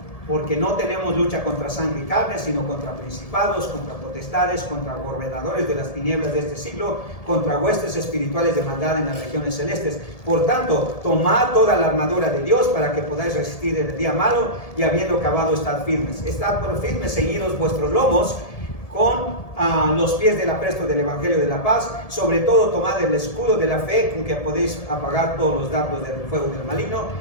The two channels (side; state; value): right; late; 1.7 ms